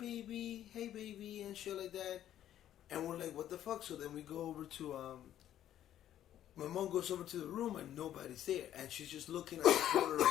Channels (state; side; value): quieter; right; 11.5 dB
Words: and shit like that. And we're like, what the fuck? So then we go over to, my mom goes over to the room, and nobody's there. And she's just looking at the corner